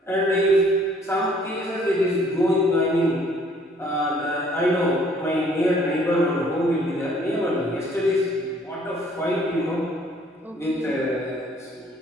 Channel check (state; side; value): normal; both; correlation 0.60